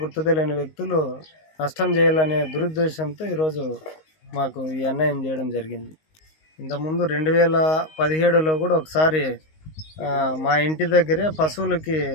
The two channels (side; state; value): right; late; 19 ms